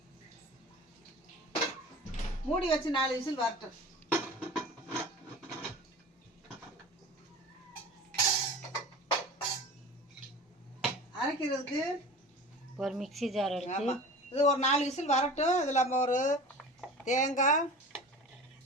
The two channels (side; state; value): both; normal; correlation 0.37